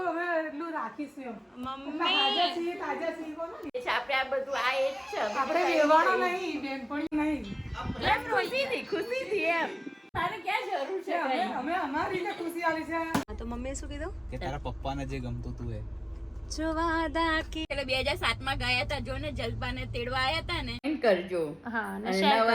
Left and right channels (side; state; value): both; identical; correlation 1.00